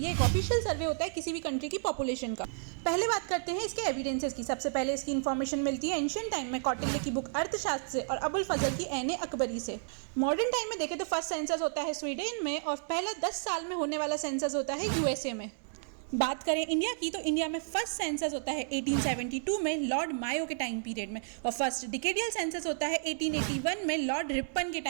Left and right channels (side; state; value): left; silent; digital silence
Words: एक ऑफिशियल सर्वे होता है किसी भी कंट्री की पॉपुलेशन का। पहले बात करते हैं इसके एविडेंसेस की। सबसे पहले इसकी इन्फॉर्मेशन मिलती है एंशियंट टाइम में कौटिल्य की बुक अर्थशास्त्र से और अबुल फजल की ऐन अकबरी से। मॉडर्न टाइम में देखें तो फर्स्ट सेंसस होता है स्वीडन में और पहला 10 साल में होने वाला सेंसस होता है यूएसए में। बात करें इंडिया की तो इंडिया में फर्स्ट सेंसस होता है 1872 में लॉर्ड मायो के टाइम पीरियड में और फर्स्ट डिकेडियल सेंसस होता है 1881 में लॉर्ड रिपन के